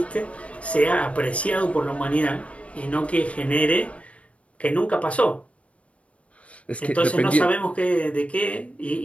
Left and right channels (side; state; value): right; late; 0.063 ms